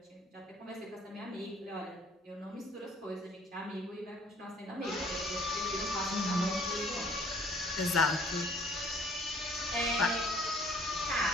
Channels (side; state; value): both; normal; correlation 0.56